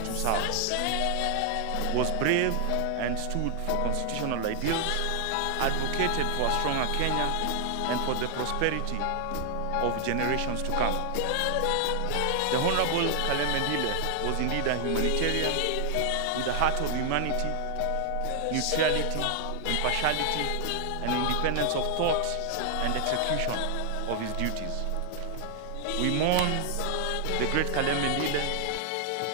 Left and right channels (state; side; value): different; both; correlation 0.00